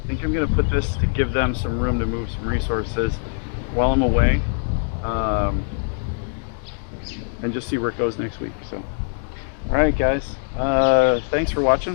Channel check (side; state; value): right; silent; 64 dB below the other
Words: I think I'm going to put this to give them some room to move some resources while I'm away, and just see where it goes next week. So. Alright guys, thanks for watching,